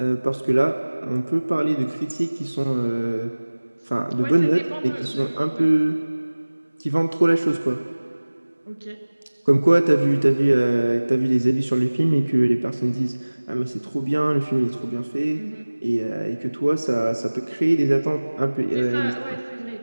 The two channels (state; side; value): inverted; both; correlation -1.00